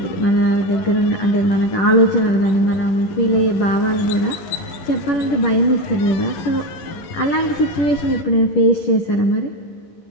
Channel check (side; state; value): right; late; 11 ms